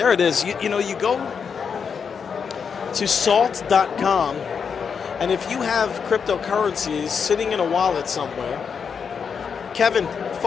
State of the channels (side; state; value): right; quieter; 6.4 dB